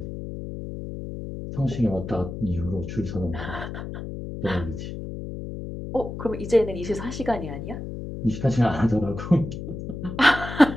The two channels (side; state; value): left; noise; hum, 8 dB below the sound